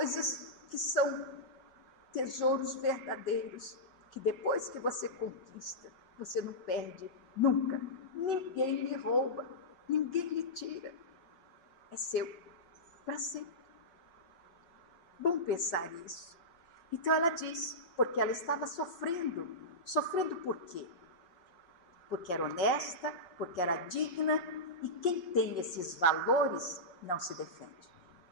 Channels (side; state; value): right; late; 5.8 ms